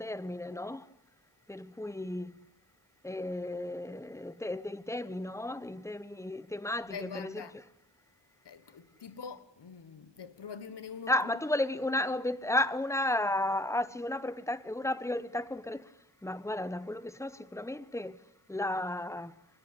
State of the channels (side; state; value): both; normal; correlation 0.60